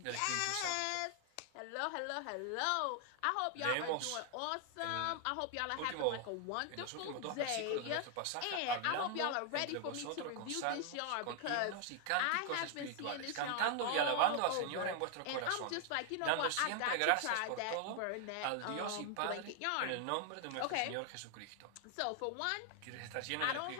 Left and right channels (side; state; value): both; different; correlation 0.00